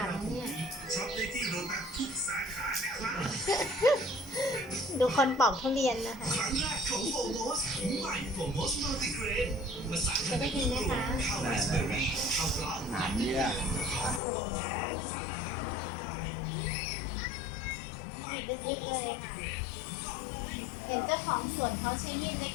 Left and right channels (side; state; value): right; drops out; at 14.2 s